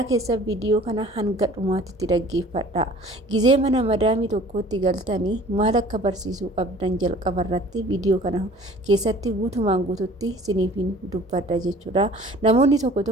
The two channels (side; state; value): both; normal; correlation 0.49